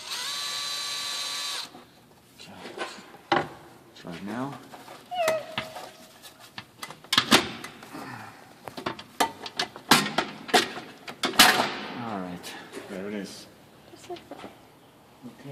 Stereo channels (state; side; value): identical; both; correlation 1.00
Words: Okay. Try it now. There it is. Just like that.